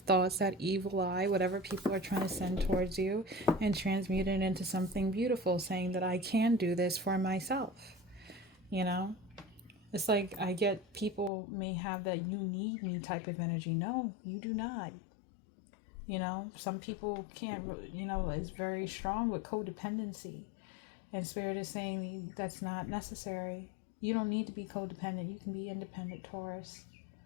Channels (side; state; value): right; drops out; at 11.3 s